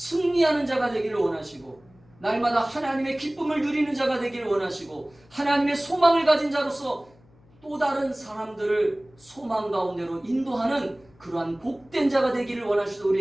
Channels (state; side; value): noise; left; hum, 29 dB below the sound